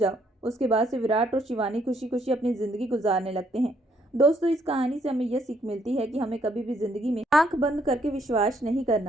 उसके बाद से विराट और शिवानी खुशी खुशी अपनी जिंदगी गुजारने लगते हैं। दोस्तों, इस कहानी से हमें यह सीख मिलती है कि हमें कभी भी जिंदगी में आंख बंद करके विश्वास नहीं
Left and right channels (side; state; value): both; normal; correlation 0.70